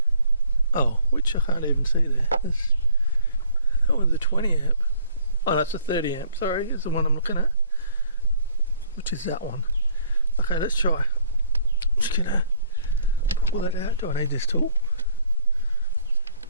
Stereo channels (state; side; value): inverted; both; correlation -0.59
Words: Oh, which I can't even see there. That one's a 20 amp. Oh, that's a 30 amp. Sorry, is the one I'm looking at, which is that one. Okay, let's try. Just gonna pull it out. Do I need this tool?